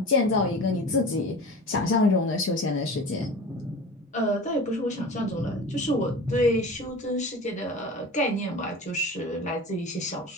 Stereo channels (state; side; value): normal; both; correlation 0.35